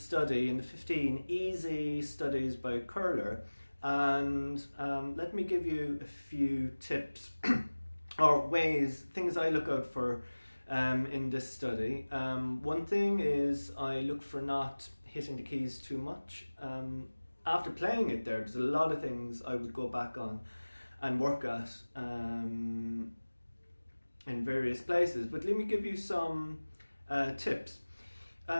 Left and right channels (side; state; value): both; inverted; correlation -1.00